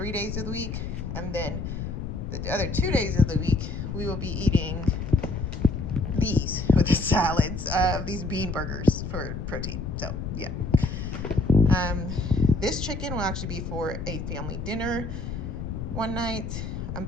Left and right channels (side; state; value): left; noise; rumble, 5 dB below the sound